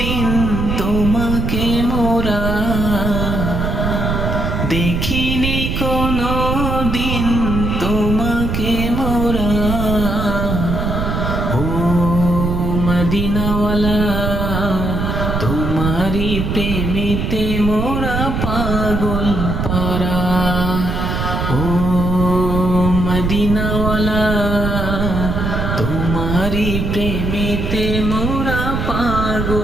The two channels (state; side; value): noise; right; rumble, 1 dB below the sound